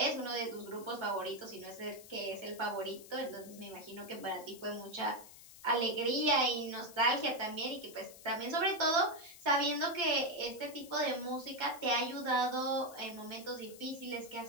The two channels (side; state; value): left; noise; hiss, 18 dB below the sound